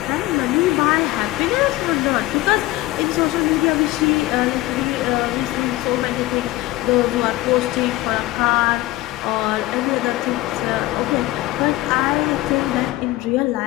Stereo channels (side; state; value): right; quieter; 17.8 dB